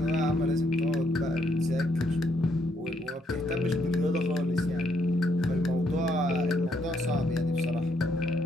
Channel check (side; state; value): both; normal; correlation 0.73